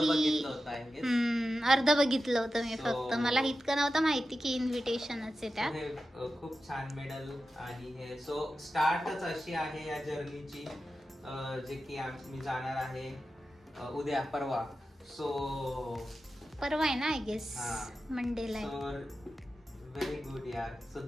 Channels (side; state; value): both; normal; correlation 0.92